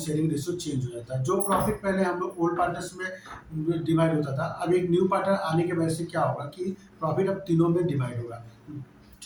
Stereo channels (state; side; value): identical; both; correlation 1.00